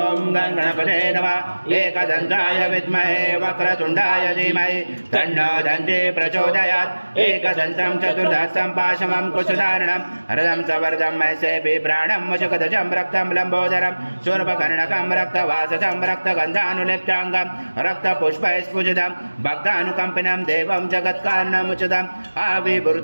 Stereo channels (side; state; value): both; inverted; correlation -1.00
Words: गणपते नमः। एकदन्ताय विद्महे वक्रतुण्डाय धीमहि तन्नो दन्ती प्रचोदयात्। एकदन्तं चतुर्दशं पाशमं कुशधारणं हरदं सवर्धं मैसे बिभ्राणं मुचकदजं रक्तं लम्बोदरं शूर्पकर्णकं रक्तवाससं रक्तगन्धानुलिप्ताङ्गं रक्तपुष्पैस्फुजितं भक्तानुकम्पिनं देवं जगत्कारणमुचितम्